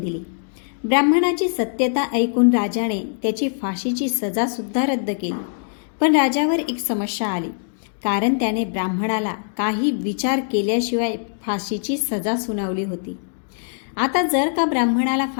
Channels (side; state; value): right; silent; digital silence